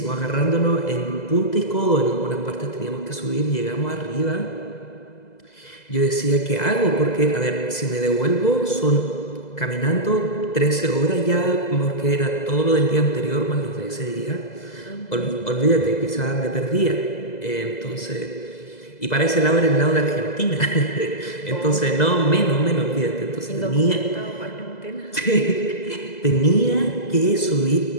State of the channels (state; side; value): late; right; 2.0 ms